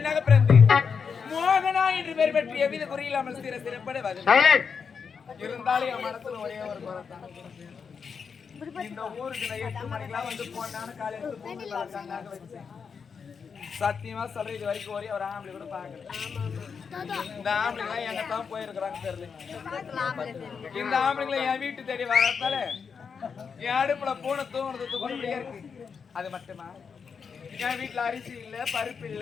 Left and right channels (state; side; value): quieter; right; 6.0 dB